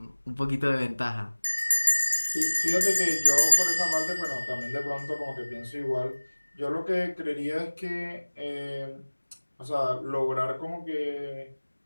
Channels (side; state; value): both; inverted; correlation -1.00